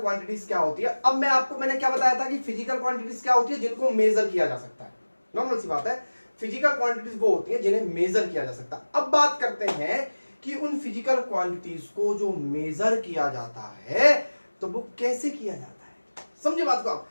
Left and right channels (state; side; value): inverted; both; correlation -1.00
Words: क्वांटिटीज क्या होती है। अब मैंने क्या बताया था कि फिजिकल क्वांटिटीज क्या होती है, जिनको मेजर किया जा सकता है। नॉर्मल सी बात है, फिजिकल क्वांटिटीज वो होती है जिन्हें मेजर किया जा सकता है। अब बात करते हैं कि उन फिजिकल क्वांटिटीज को जो मेजर किया जाता है तो वो कैसे किया जाता है। समझे बात को आप,